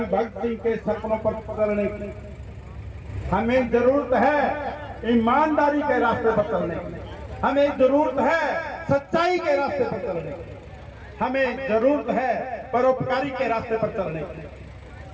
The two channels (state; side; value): identical; both; correlation 1.00